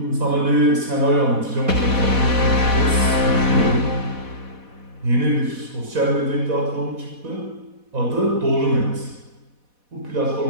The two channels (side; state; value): left; late; 4.1 ms